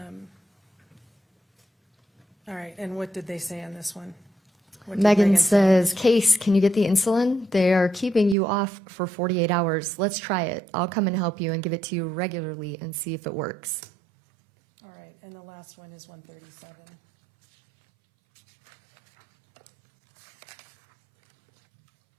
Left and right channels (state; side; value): drops out; left; at 8.3 s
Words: All right, and what did they say on this one? What did Megan say? says, Case, can you get the insulin? They are keeping you off for 48 hours. Let's try it. I'll come and help you and give it to you regularly and see if it works. All right, and the last one is 137.